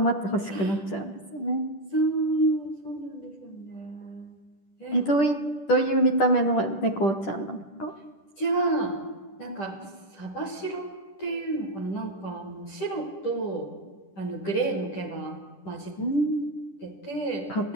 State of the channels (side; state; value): right; late; 10 ms